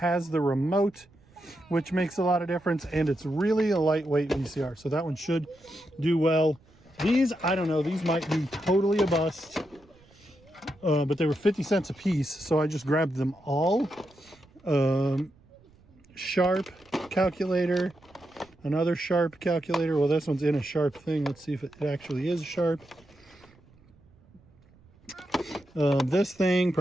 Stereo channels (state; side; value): noise; right; rumble, 29 dB below the sound